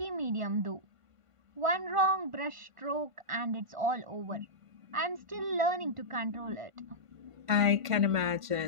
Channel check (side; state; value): left; late; 1.5 ms